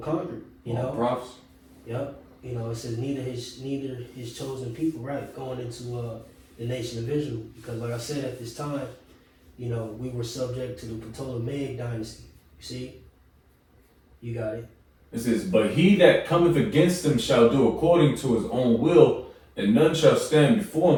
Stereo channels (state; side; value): identical; both; correlation 1.00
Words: conquered. Prophets. Yep. You know, it says neither his chosen people, right, going into the nation of Israel, because like I said, at this time, you know, we were subject to the Ptolemaic dynasty. You see, you got it. It says, but he that cometh against them shall do according to his own will, and none shall stand before